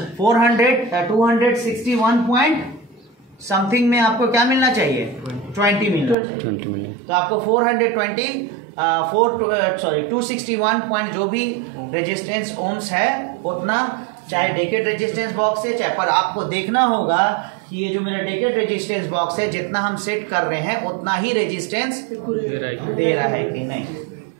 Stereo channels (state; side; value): drops out; left; at 6.2 s